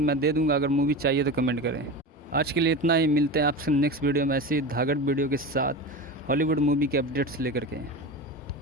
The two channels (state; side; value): normal; both; correlation 0.27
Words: मैं दे दूँगा, अगर मूवी चाहिए तो कमेंट करें। आज के लिए इतना ही, मिलते हैं आपसे नेक्स्ट वीडियो में ऐसी धागड़ वीडियो के साथ हॉलीवुड मूवी के अपडेट्स लेकर के।